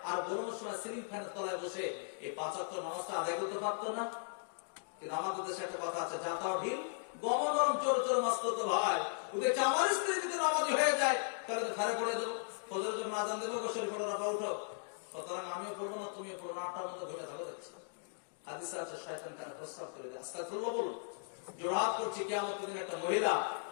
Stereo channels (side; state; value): right; silent; digital silence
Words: আর গরমের সময় সিলিং ফ্যানের তলায় বসে এই 5 ওয়াক্ত নামাজটা আদায় করতে পারতো না? কিন্তু আমাদের দেশে একটা কথা আছে, যাতা ঢিল গমনরম চোর চোর মাস করতে ভাই, ওকে আমার স্ত্রী যদি নামাজি হয়ে যায় তাহলে তো ফেরে পড়ে দেবো, ফজরের জন্য আজান দেবো, গোসল করো না, উঠো, সুতরাং আমিও পড়বো না তুমিও পড়বো না, 8টার মধ্যে ঘুরে থাকা যাচ্ছে। হাদিসে আছে শয়তান কেন প্রস্তাব করে দেয়, আস্তাগফিরুল্লাহ বলুন। জোড়হাত করছি কিয়ামতের দিন একটা মহিলা